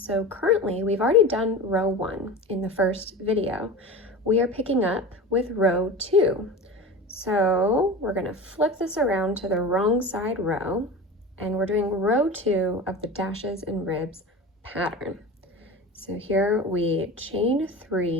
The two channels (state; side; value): normal; both; correlation 0.31